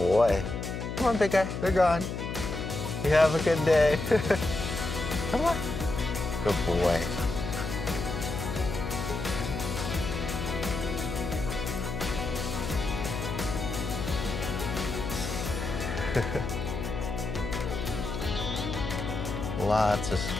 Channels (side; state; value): left; noise; hum, 5 dB below the sound